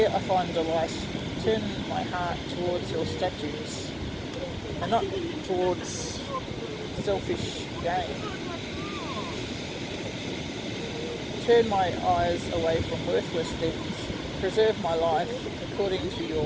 I find delight. Turn my heart towards your statutes, and not towards selfish gain. Turn my eyes away from worthless things. Preserve my life according to your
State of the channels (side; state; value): both; identical; correlation 1.00